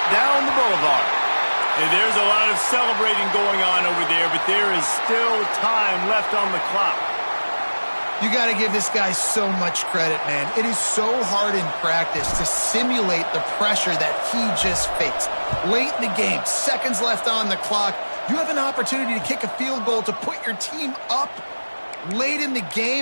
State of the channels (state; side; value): inverted; both; correlation -1.00